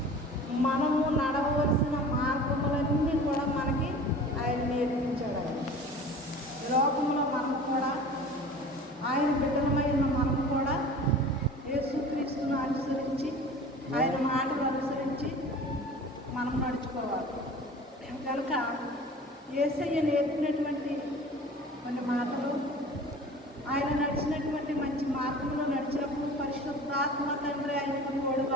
మనము నడవలసిన మార్గములన్నీ కూడా మనకి ఆయన నేర్పించాడు. ఆయన లోకంలో మనం కూడా ఆయన బిడ్డలమైన మనం కూడా యేసుక్రీస్తును అనుసరించి ఆయన మాటలు అనుసరించి మనం నడుచుకోవాలి. కనుక యేసయ్య నేర్పినటువంటి కొన్ని మాటలు, ఆయన నడిచినటువంటి మంచి మార్గంలో నడిచినప్పుడు పరిశుద్ధాత్మ తండ్రి ఆయనకు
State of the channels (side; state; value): both; normal; correlation 0.41